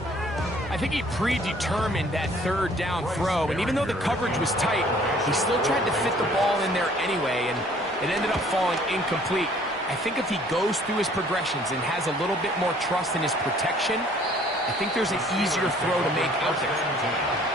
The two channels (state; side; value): normal; both; correlation 0.57